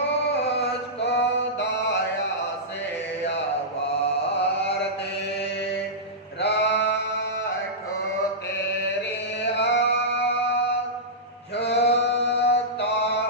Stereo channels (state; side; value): normal; both; correlation -0.13